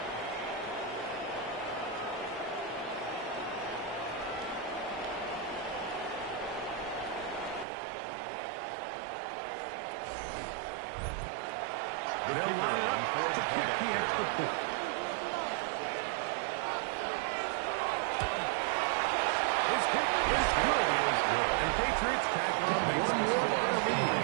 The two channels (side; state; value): left; drops out; at 7.7 s